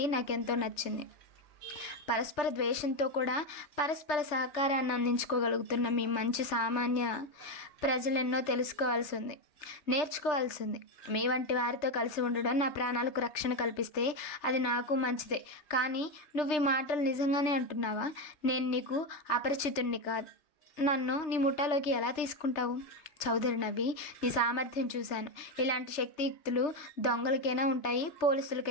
నాకెంతో నచ్చింది. పరస్పర ద్వేషంతో కూడా పరస్పర సహకారాన్ని అందించుకోగలుగుతున్న మీ మంచి సామాన్య ప్రజలెన్నో తెలుసుకోవాల్సి ఉంది, నేర్చుకోవాల్సి ఉంది. మీ వంటి వారితో కలిసి ఉండడం నా ప్రాణాలకు రక్షణ కల్పిస్తే అది నాకు మంచిదే. కానీ నువ్వు ఈ మాటలు నిజంగానే అంటున్నావా? నేను నీకు అపరిచితుణ్ణి కాదు. నన్ను నీ ముఠాలోకి ఎలా తీసుకుంటావు? చౌదరి నవ్వి, నీ సామర్థ్యం చూశాను. ఇలాంటి శక్తియుక్తులు దొంగలకైనా ఉంటాయి,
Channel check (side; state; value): right; late; 3.3 ms